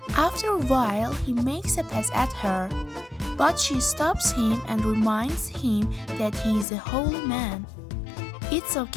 After a while, he makes a pass at her, but she stops him and reminds him that he is a holy man. "It's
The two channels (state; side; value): drops out; right; at 6.7 s